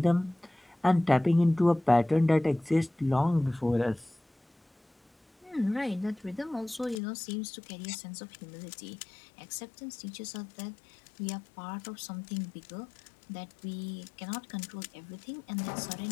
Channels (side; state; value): right; drops out; at 7.0 s